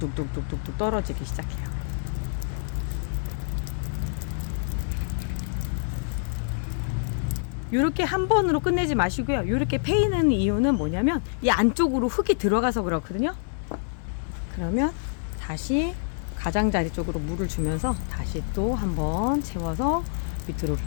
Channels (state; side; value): silent; right; 60 dB below the other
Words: 떨어지기 시작해요. 이렇게 한 번으로 끝내지 마시고요. 이렇게 패이는 이유는 뭐냐면 이 안쪽으로 흙이 들어가서 그렇거든요. 그러면 다시 가장자리 쪽으로 물을 주면서 다시 또 한 번 채워서 밑으로